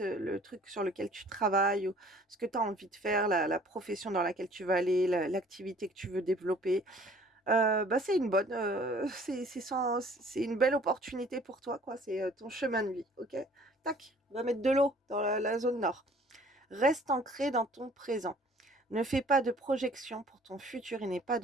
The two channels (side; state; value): both; normal; correlation 0.53